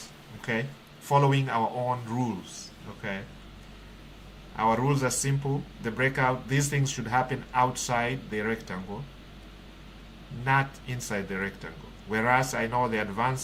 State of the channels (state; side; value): identical; both; correlation 1.00